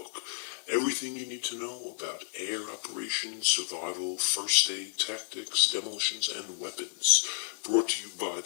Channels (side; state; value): right; silent; digital silence